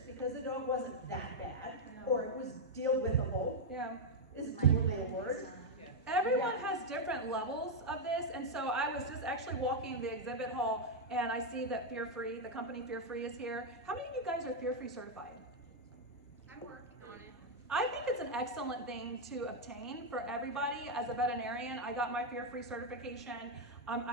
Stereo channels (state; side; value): normal; both; correlation 0.00